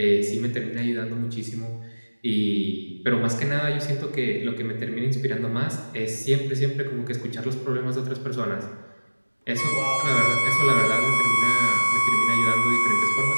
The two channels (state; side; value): inverted; both; correlation -1.00